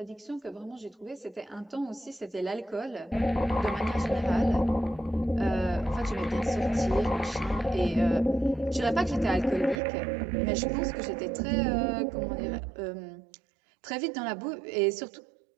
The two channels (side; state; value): left; drops out; at 9.8 s